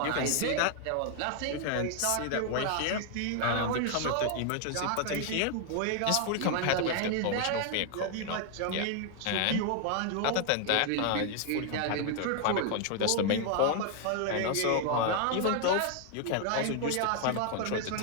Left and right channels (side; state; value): both; different; correlation 0.00